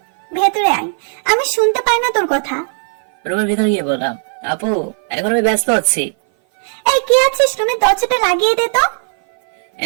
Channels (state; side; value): silent; left; 58 dB below the other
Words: ভেতরে আয়, আমি শুনতে পাই না তোর কথা। রুমের ভিতরে গিয়ে বললাম, আপু এখন আমি ব্যস্ত আছি। এই কে আছিস? রুমের দরজাটা লাগিয়ে দে তো।